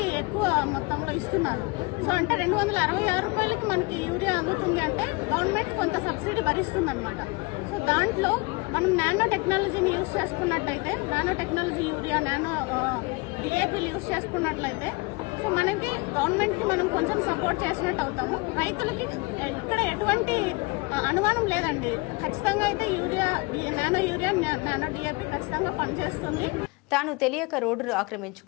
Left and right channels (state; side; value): quieter; right; 26.6 dB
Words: ఎక్కువ మొత్తంలో ఇస్తున్నారు. సో అంటే 266 రూపాయలకి మనకి యూరియా అందుతుంది అంటే గవర్నమెంట్ కొంత సబ్సిడీ భరిస్తుంది అనమాట. సో దాంట్లో మనం నానో టెక్నాలజీని యూజ్ చేసుకున్నట్లయితే, నానో టెక్నాలజీ యూరియా, నానో డిఏపీలు యూజ్ చేసుకున్నట్లయితే సో మనకి గవర్నమెంట్ కి మనం కొంచెం సపోర్ట్ చేసినట్టు అవుతాము. రైతులకి ఇక్కడ ఎటువంటి అనుమానం లేదండి. ఖచ్చితంగా అయితే urea, nano urea, nano DAP ఖచ్చితంగా పనిచేస్తుంది. తాను తెలియక రోడ్డును